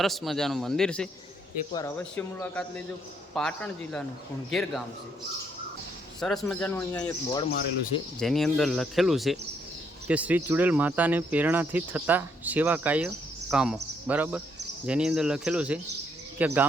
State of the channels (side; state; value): both; normal; correlation 0.72